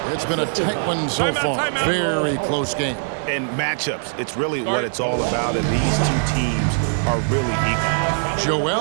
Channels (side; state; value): left; silent; 61 dB below the other